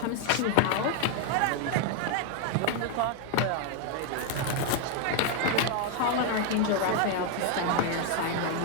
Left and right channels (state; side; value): different; both; correlation 0.01